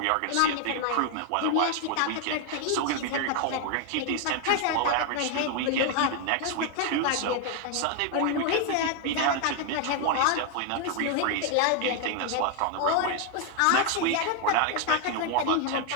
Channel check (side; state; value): both; different; correlation 0.00